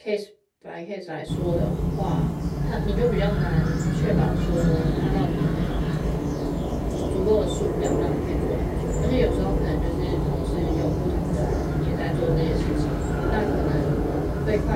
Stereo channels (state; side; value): identical; both; correlation 1.00